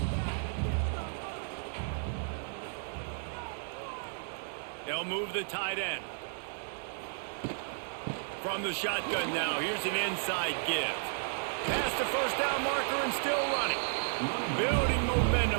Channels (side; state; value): left; silent; digital silence